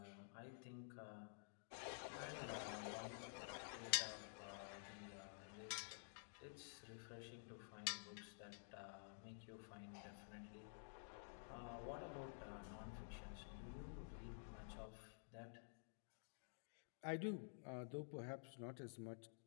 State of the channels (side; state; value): right; silent; digital silence